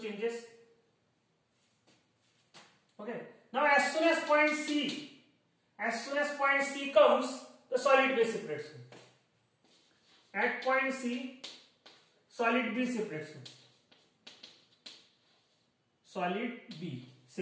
Okay. Now as soon as point C comes, the solid B separates. At point C, solid B separates. Solid B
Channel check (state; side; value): identical; both; correlation 1.00